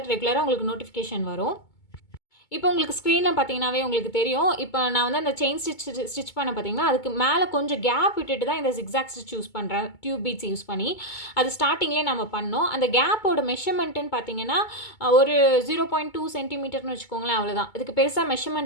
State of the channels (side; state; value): right; late; 2.2 ms